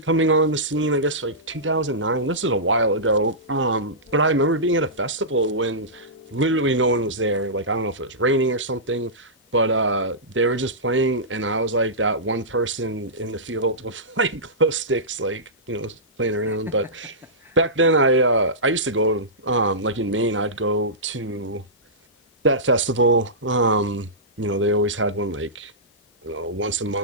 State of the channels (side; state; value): both; normal; correlation -0.17